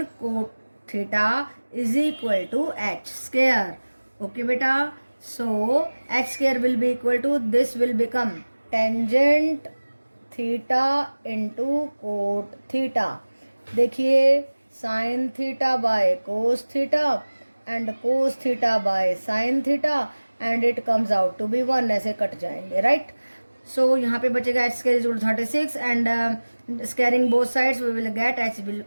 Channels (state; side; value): inverted; both; correlation -1.00